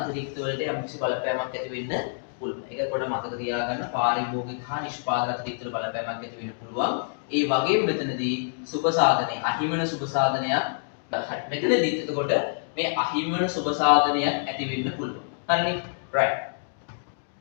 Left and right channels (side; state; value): right; silent; digital silence